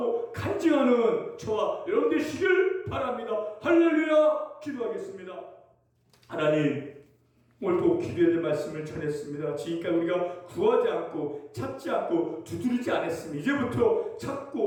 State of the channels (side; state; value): both; identical; correlation 1.00